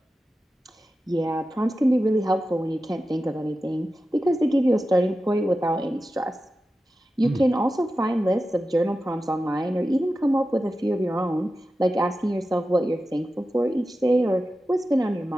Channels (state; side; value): normal; both; correlation 0.93